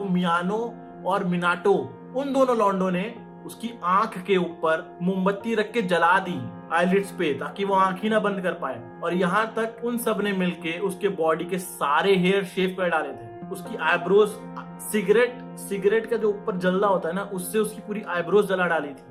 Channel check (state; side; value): identical; both; correlation 1.00